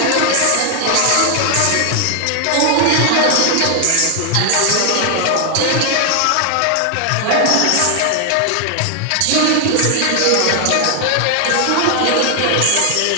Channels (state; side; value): different; both; correlation 0.00